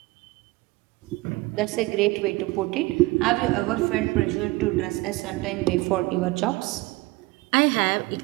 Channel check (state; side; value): quieter; left; 21.3 dB